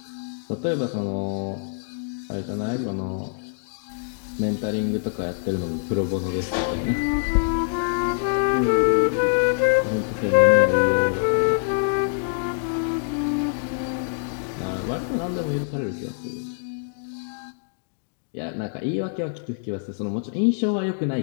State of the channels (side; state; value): right; silent; digital silence